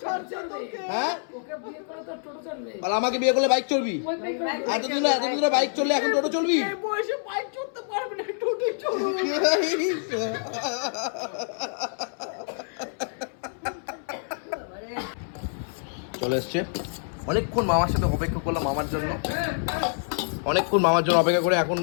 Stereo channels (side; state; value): right; silent; 60 dB below the other